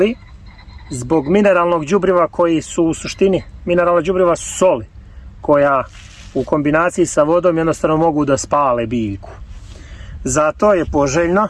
zbog mineralnog đubriva koji su u suštini, mineralna đubriva su soli koja u kombinaciji sa vodom jednostavno mogu da spale biljku. Zato je poželjno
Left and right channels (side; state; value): both; identical; correlation 1.00